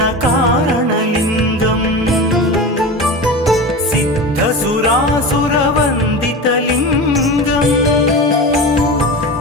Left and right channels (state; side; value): normal; both; correlation 0.28